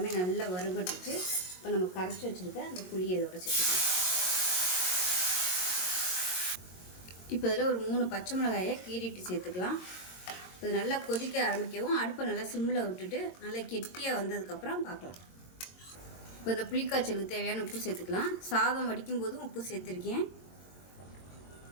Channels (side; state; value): right; late; 22 ms